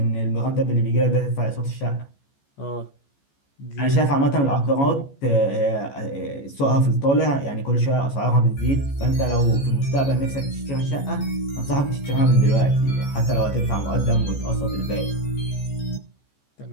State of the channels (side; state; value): right; late; 14 ms